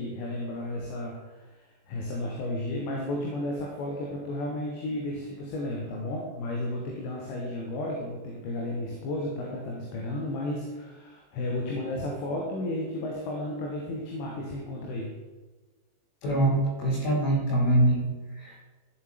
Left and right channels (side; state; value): right; late; 21 ms